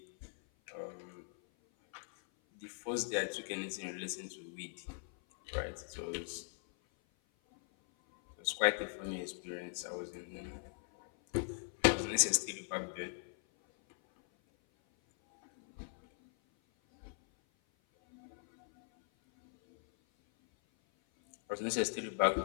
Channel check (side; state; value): right; silent; 52 dB below the other